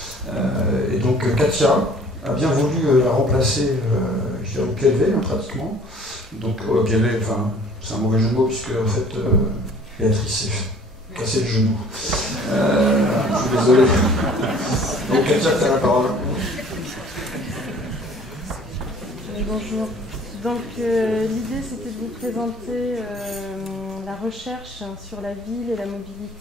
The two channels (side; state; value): both; normal; correlation 0.52